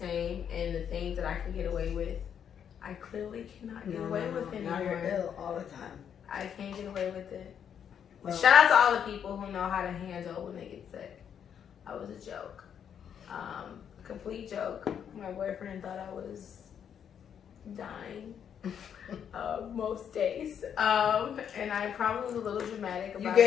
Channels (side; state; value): right; quieter; 8.3 dB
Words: and the things that I can get away with, I clearly cannot get away with anymore. Now you're ill all the time. I can't get away with it. Well, shout out to all the people who know how to handle when they get sick. I was a joke. Complete joke. My boyfriend thought I was dying most days. And I probably was a little dramatic about it. You